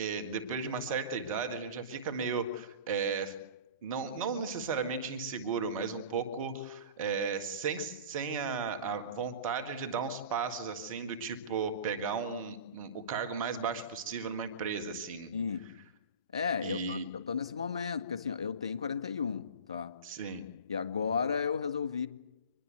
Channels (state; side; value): inverted; both; correlation -0.34